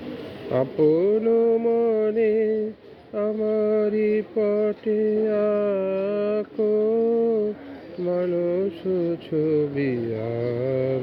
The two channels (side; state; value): both; identical; correlation 1.00